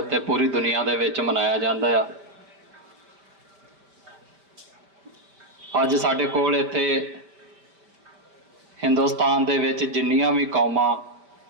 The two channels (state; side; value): late; left; 5.2 ms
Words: ਪੂਰੀ ਦੁਨੀਆ ਦੇ ਵਿੱਚ ਮਨਾਇਆ ਜਾਂਦਾ ਆ। ਅੱਜ ਸਾਡੇ ਕੋਲ ਇੱਥੇ ਹਿੰਦੁਸਤਾਨ ਦੇ ਵਿੱਚ ਜਿੰਨੀਆਂ ਵੀ ਕੌਮਾਂ